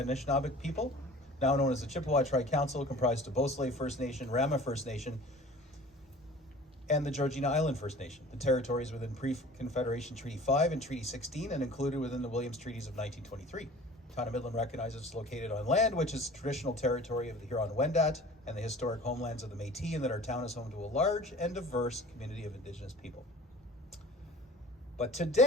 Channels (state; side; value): normal; both; correlation 0.44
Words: people, now known as the Chippewa Tri-Council, comprised of Beausoleil First Nation, Rama First Nation, and the Georgina Island First Nation. The territory is within Pre-Confederation Treaty 5 and Treaty 16 and included within the Williams Treaties of 1923. The town of Midland recognizes it's located on land which is traditional territory of the Huron-Wendat and the historic homelands of the Métis, and that our town is home to a large and diverse community of Indigenous people. But